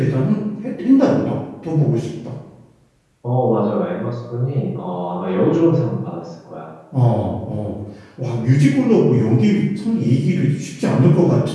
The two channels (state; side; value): identical; both; correlation 1.00